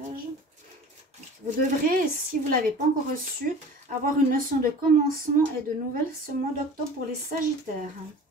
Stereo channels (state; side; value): normal; both; correlation 0.41